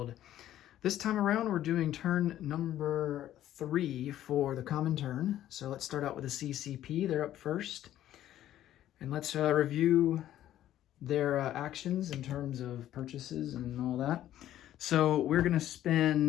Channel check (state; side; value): quieter; right; 12.5 dB